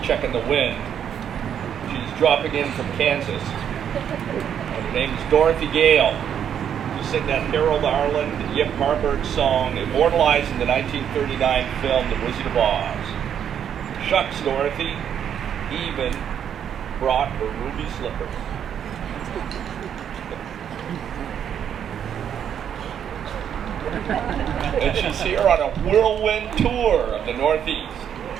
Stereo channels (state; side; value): quieter; left; 8.8 dB